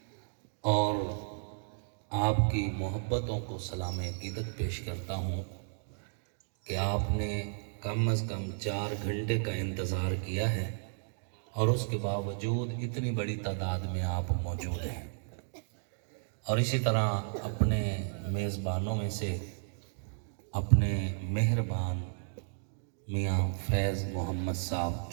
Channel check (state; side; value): silent; left; digital silence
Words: اور آپ کی محبتوں کو سلام عقیدت پیش کرتا ہوں کہ آپ نے کم از کم 4 گھنٹے کا انتظار کیا ہے اور اس کے باوجود اتنی بڑی تعداد میں آپ موجود ہیں، اور اسی طرح اپنے میزبانوں میں سے اپنے مہربان میاں فیض محمد صاحب